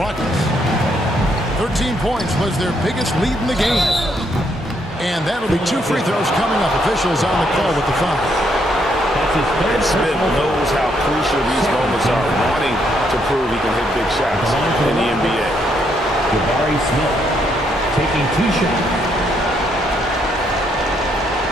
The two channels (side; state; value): both; normal; correlation 0.73